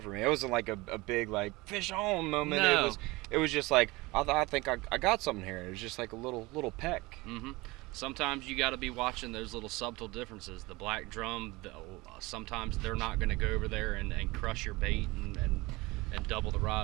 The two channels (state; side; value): quieter; left; 22.4 dB